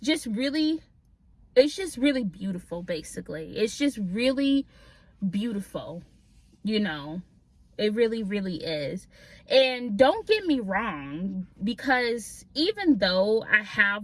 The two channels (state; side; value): identical; both; correlation 1.00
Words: really beautiful. Basically, it's just really beautiful, you know. It really, really is. And don't get me wrong, because even though I